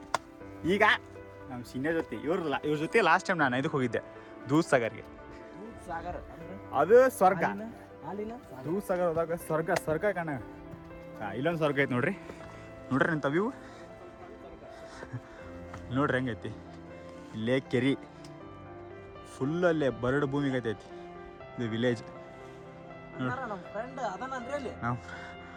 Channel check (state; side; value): identical; both; correlation 1.00